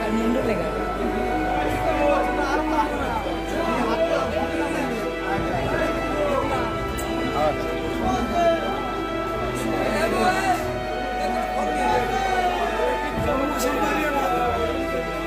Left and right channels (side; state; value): both; identical; correlation 1.00